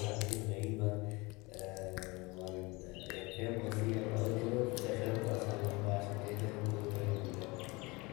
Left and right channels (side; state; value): right; quieter; 24.8 dB